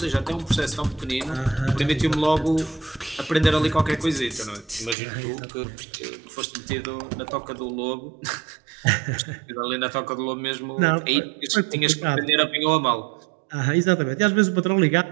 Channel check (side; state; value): left; drops out; at 5.0 s